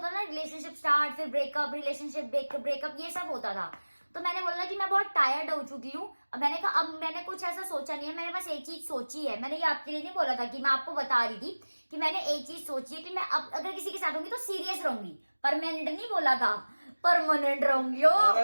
ना रिलेशनशिप स्टार्ट, फिर ब्रेकअप, रिलेशनशिप ब्रेकअप, ये सब होता था। तो मैंने बोला कि मैं बहुत टायर्ड हो चुकी हूँ। अब मैंने कहा अब मैंने कुछ ऐसा सोचा नहीं है, मैंने बस एक चीज सोची है। मैंने ये आपके लिए नहीं बोला था कि मैं आपको बता रही थी कि मैंने एक चीज सोची है कि मैं अब अगर किसी के साथ होंगी तो सीरियस रहूंगी, परमानेंट नहीं बोला था, परमानेंट रहूंगी।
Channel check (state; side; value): inverted; both; correlation -1.00